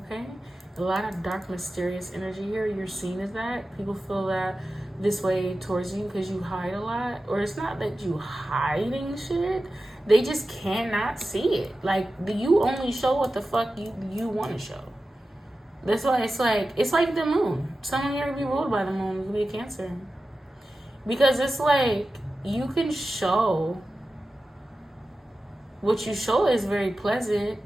a lot of dark, mysterious energy here. You're seen as that. People feel that this way towards you because you hide a lot, or it's not that you hiding shit, they just cannot see it. Like, you only show what the fuck you want to show. That's why it's like the moon. Someone here to be ruled by the moon could be a Cancer, because it's like you can show what you show is very pleasant,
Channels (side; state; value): both; normal; correlation 0.93